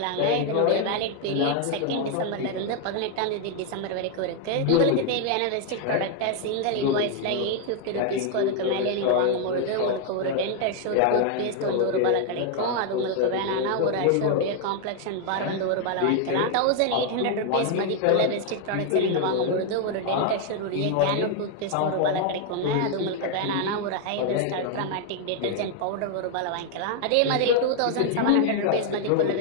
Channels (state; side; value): different; both; correlation 0.00